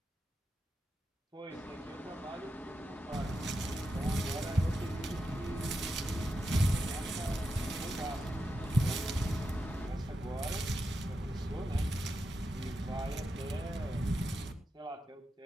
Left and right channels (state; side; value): normal; both; correlation 0.88